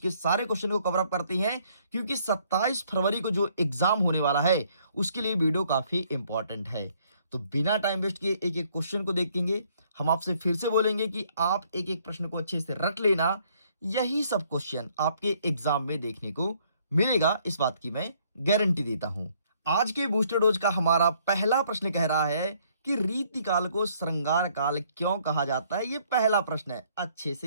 सारे क्वेश्चन को कवर अप करते हैं, क्योंकि 27 फरवरी को जो एग्जाम होने वाला है उसके लिए वीडियो काफी इंपॉर्टेंट है। तो बिना टाइम वेस्ट किए एक एक क्वेश्चन को देखेंगे। हम आपसे फिर से बोलेंगे कि आप एक एक प्रश्न को अच्छे से रट लेना। यही सब क्वेश्चन आपके एग्जाम में देखने को मिलेगा, इस बात की मैं गारंटी देता हूं। आज के बूस्टर डोज का हमारा पहला प्रश्न कह रहा है कि रीतिकाल को श्रृंगार काल क्यों कहा जाता है। ये पहला प्रश्न है, अच्छे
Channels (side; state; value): both; inverted; correlation -0.65